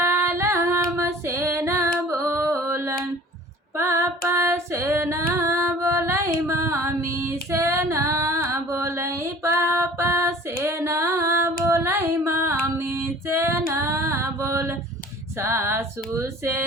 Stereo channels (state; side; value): normal; both; correlation 0.47